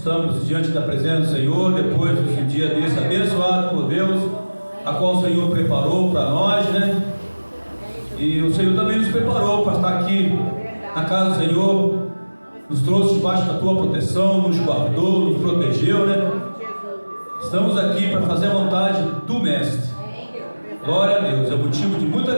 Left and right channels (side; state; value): both; inverted; correlation -1.00